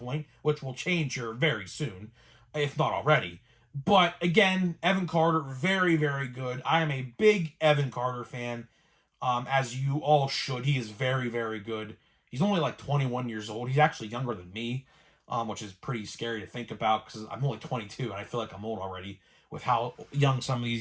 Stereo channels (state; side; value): identical; both; correlation 1.00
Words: which will change here very soon, if not already. But again, Evan Carter, very, very good. I am a big Evan Carter fan, as you all should. He is very, very good. He's only 21 years old. He's actually younger than me, which is pretty scary to think about because I'm only 22 and I feel like I'm old already with how young some of